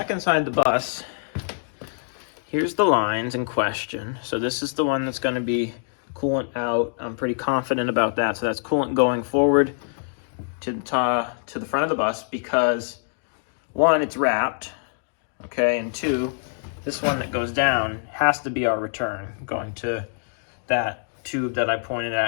inside the bus, here's the lines in question. So this is the one that's going to be coolant out. I'm pretty confident about that. So that's coolant going forward to the front of the bus because, one, it's wrapped, okay, and two, this one that goes down has to be our return, going to that tube that I pointed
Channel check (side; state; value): right; silent; digital silence